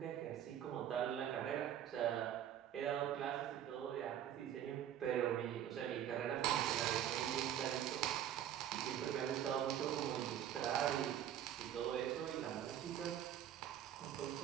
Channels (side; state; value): left; quieter; 10.6 dB